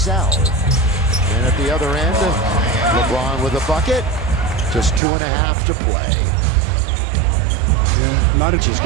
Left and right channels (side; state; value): left; drops out; at 5.0 s